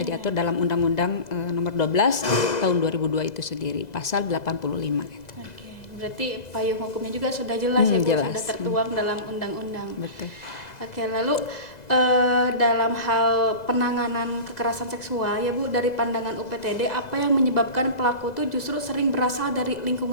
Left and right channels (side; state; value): right; late; 2.0 ms